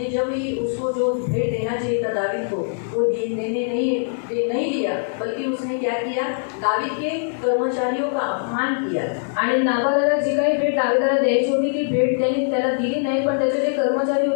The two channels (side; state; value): right; silent; 64 dB below the other